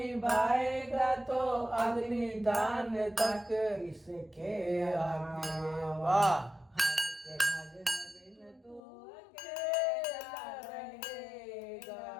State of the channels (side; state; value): right; drops out; at 8.8 s